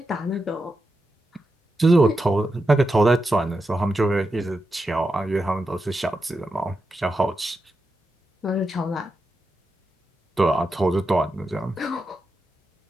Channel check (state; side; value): normal; both; correlation 0.88